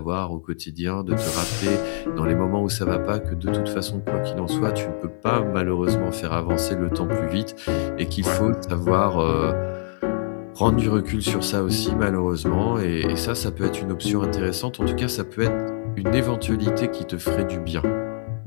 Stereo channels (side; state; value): right; silent; 56 dB below the other